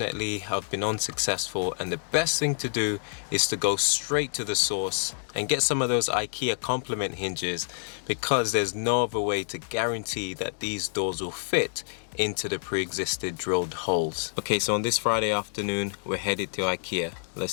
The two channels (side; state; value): right; silent; digital silence